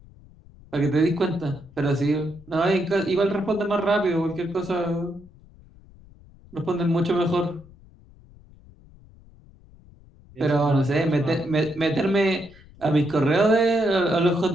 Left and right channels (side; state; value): left; noise; rumble, 24 dB below the sound